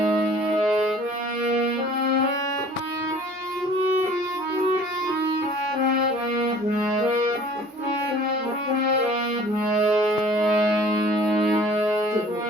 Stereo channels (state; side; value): normal; both; correlation 0.49